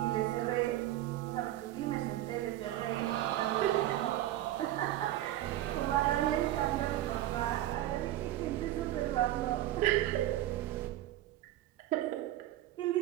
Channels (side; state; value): left; quieter; 14.2 dB